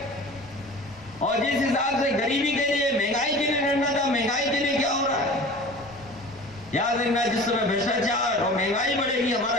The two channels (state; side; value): noise; left; rumble, 25 dB below the sound